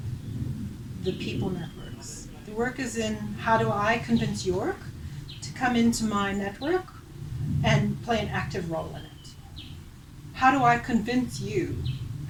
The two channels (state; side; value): identical; both; correlation 1.00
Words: the people network. work is in how do I convince York to come into my network and play an active role in it? How do I convince you?